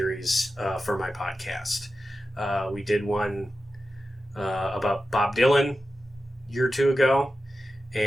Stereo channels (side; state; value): both; normal; correlation 0.92